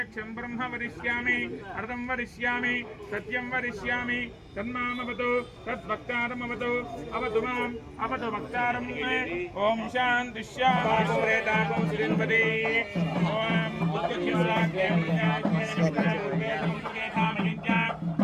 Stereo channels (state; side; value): identical; both; correlation 1.00